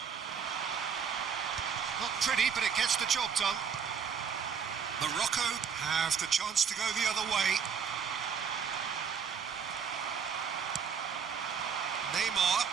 Not pretty, but it gets the job done. Morocco have the chance to go the other way. Neymar.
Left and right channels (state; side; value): quieter; left; 6.8 dB